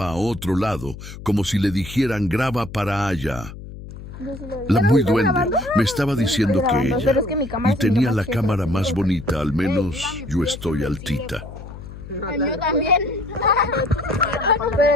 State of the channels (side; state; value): left; noise; hum, 13 dB below the sound